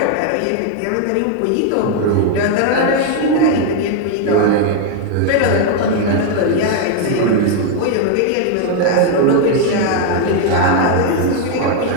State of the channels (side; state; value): both; different; correlation 0.00